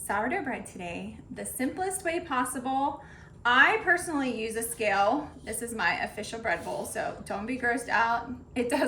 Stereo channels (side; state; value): both; identical; correlation 1.00